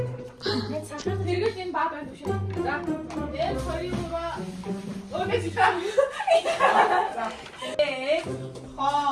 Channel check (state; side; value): identical; both; correlation 1.00